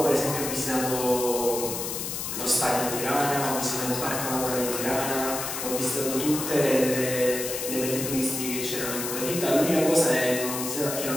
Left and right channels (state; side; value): noise; left; hiss, 4 dB below the sound